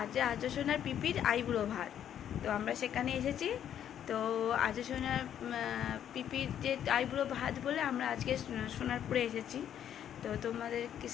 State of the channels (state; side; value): quieter; right; 9.9 dB